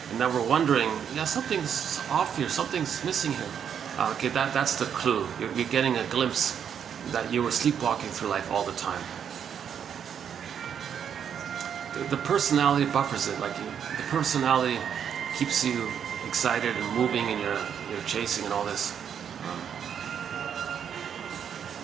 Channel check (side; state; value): left; quieter; 8.2 dB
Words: And now we're wondering, yeah, something's off here, something's missing here. Okay, that's the clue. You're getting a glimpse that you were sleepwalking through life all the time. The personality buffers it, the personality keeps you excited and moving, and you're chasing and all this.